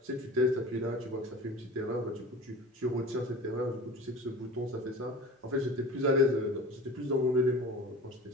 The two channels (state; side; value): normal; both; correlation 0.37